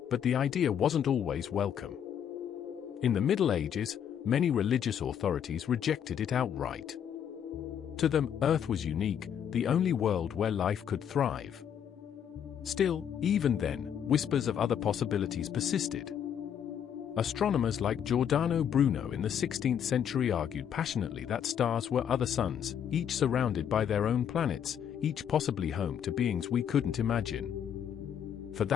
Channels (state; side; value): quieter; right; 8.8 dB